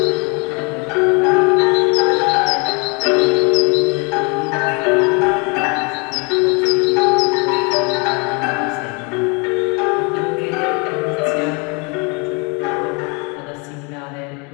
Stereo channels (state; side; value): quieter; right; 31.9 dB